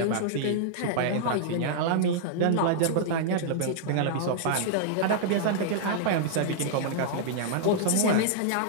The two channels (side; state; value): both; different; correlation -0.02